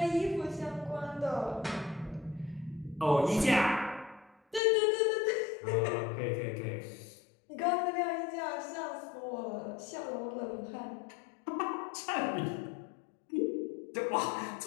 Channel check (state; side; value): drops out; right; at 4.6 s